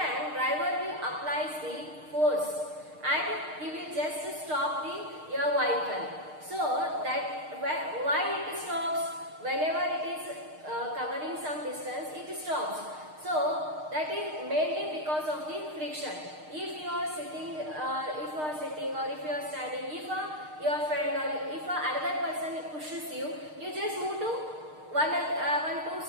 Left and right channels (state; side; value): late; left; 6.5 ms